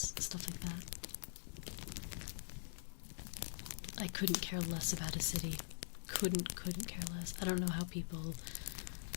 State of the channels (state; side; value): silent; right; digital silence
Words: stuff like that. I couldn't care less about a city. Couldn't care less. I don't know how people